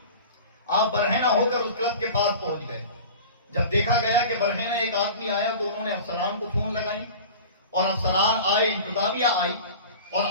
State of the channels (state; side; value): inverted; both; correlation -0.37